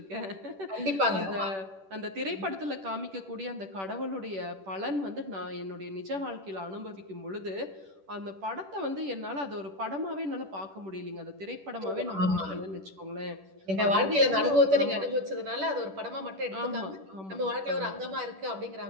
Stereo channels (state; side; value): late; left; 10 ms